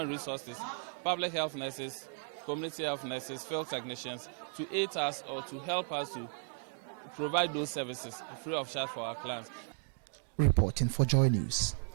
resources, public health nurses, community health nurses, field technicians, to aid us or to help us to provide those services free of charge for our clients. Reporting for Joy News,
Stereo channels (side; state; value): left; silent; 54 dB below the other